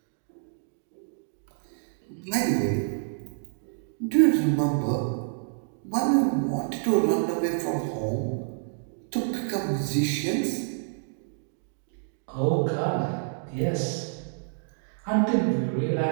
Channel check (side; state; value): left; silent; digital silence